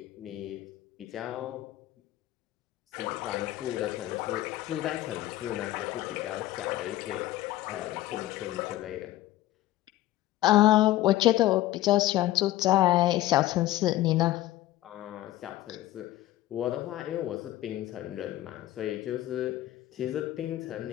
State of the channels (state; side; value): quieter; right; 15.4 dB